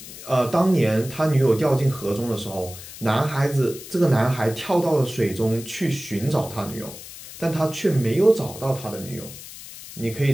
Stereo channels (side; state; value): left; noise; hiss, 14 dB below the sound